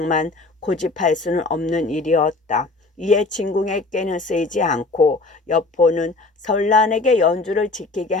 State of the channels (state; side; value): quieter; right; 3.4 dB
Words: 고집할 수는 없는 일이었다. 이에 진궁에게는 쓰이지 않고 여포는 설란에게 연주를 지키게